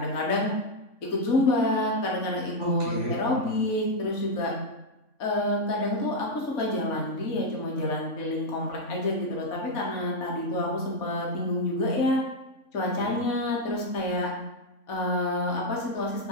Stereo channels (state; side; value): late; right; 3.5 ms